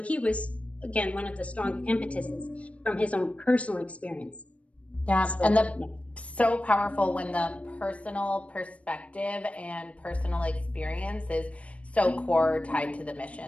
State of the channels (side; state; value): right; late; 0.064 ms